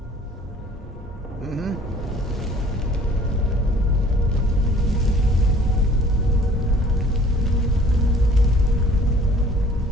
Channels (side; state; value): both; normal; correlation 0.53